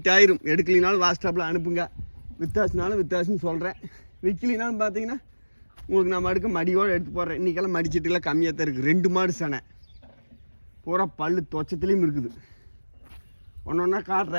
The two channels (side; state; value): both; inverted; correlation -1.00